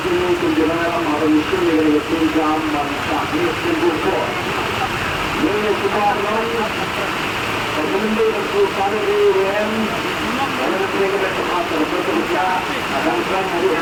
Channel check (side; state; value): both; identical; correlation 1.00